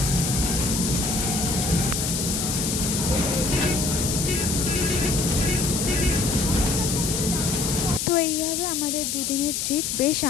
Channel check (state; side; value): noise; left; hiss, 1 dB below the sound